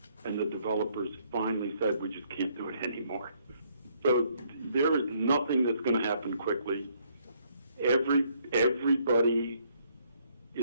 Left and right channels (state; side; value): inverted; both; correlation -0.69